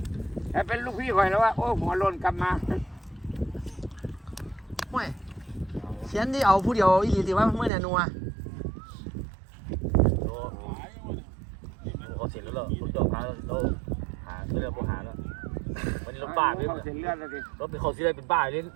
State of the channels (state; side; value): drops out; left; at 7.7 s